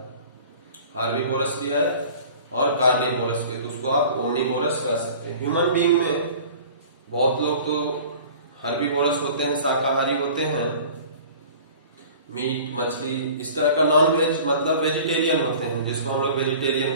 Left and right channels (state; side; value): inverted; both; correlation -0.44